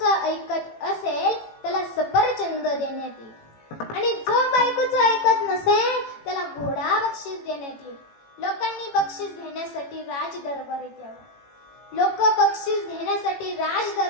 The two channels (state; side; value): late; right; 18 ms